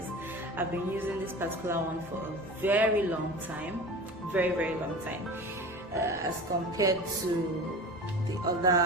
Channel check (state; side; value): normal; both; correlation 0.34